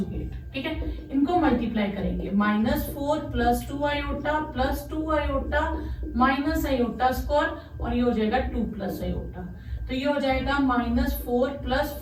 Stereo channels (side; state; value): both; identical; correlation 1.00